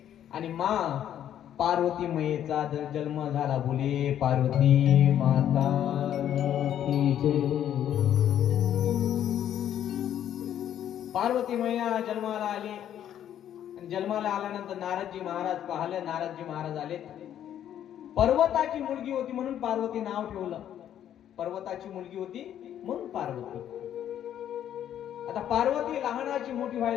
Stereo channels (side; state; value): right; quieter; 10.5 dB